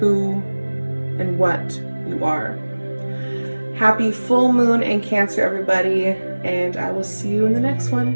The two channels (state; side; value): inverted; both; correlation -1.00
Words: and what you are. Happy full moon in Cancer, everybody, and I will see you in the next